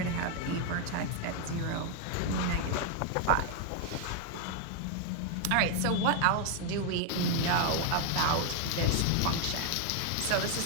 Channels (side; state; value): both; different; correlation 0.01